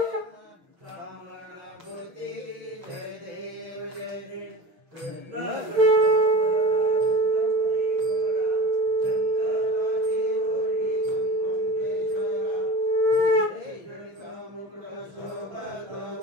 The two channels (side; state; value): left; late; 6.2 ms